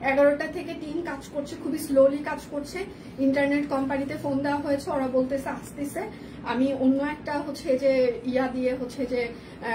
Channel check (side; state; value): both; identical; correlation 1.00